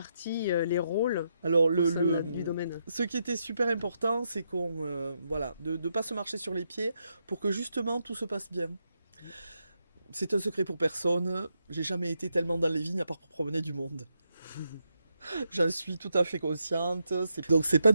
les rôles Alors, du domaine? ce qui était super important, c'est de ne pas se marcher sur les pieds pour que justement tout se passe bien. C'est un secret pour personne, j'ai jamais été tellement dans les vignes à part pour promener du monde. J'en suis tout à fait consciente. Donc c'est pas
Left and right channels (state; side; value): inverted; both; correlation -0.81